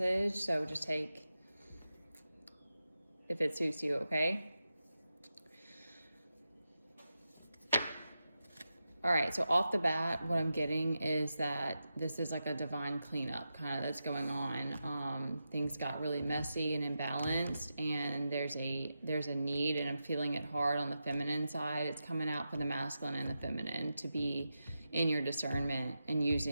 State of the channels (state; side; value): inverted; both; correlation -0.90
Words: So just take if it suits you, okay? All right, so off the bat, what I'm getting is that this is like a divine cleanup kind of that's going on. Things got really messy and imbalanced, and there's a need, and I'm feeling it hard on the feminine side. It's coming out for the masculine and the feminine to be in your discernment and